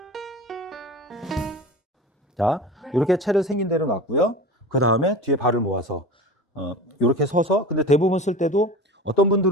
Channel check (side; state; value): both; normal; correlation 0.33